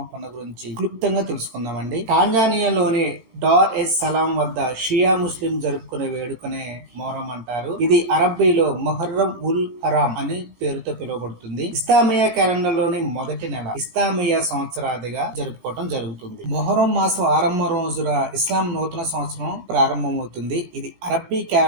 పండుగ గురించి క్లుప్తంగా తెలుసుకుందామండి. టాంజానియాలోని డార్ ఎస్ సలాం వద్ద షియా ముస్లిం జరుపుకునే వేడుకనే మొహరం అంటారు. ఇది అరబ్బీలో మొహర్రం ఉల్ హరాం అని పేరుతో పిలువబడుతుంది. ఇస్లామియా క్యాలెండర్ లోని మొదటి నెల ఇస్లామియా సంవత్సరాదిగా జరుపుకోవడం జరుగుతుంది. మొహరం మాసం ఆరంభం రోజున ఇస్లాం నూతన సంవత్సరం ప్రారంభమవుతుంది. ఇది అరబ్బీ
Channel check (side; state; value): left; late; 18 ms